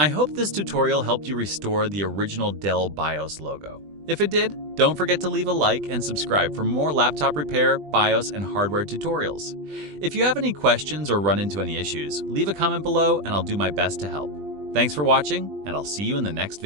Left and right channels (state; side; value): late; left; 20 ms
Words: hope this tutorial helped you restore the original Dell BIOS logo. If it did, don't forget to leave a like and subscribe for more laptop repair, BIOS, and hardware tutorials. If you have any questions or run into any issues, leave a comment below and I'll do my best to help. Thanks for watching, and I'll see you in the next